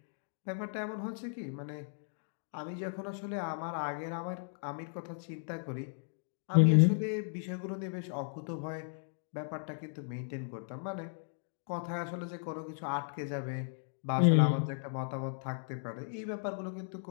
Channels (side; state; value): right; silent; digital silence